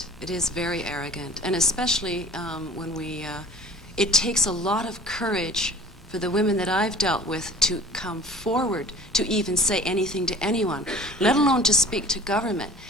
It is very arrogant, and especially when it takes a lot of courage for the women that I've dealt with to come forward to even say anything to anyone, let alone to speak to government.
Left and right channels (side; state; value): both; normal; correlation 0.46